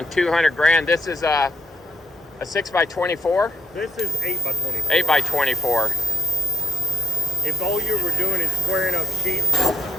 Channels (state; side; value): normal; both; correlation 0.86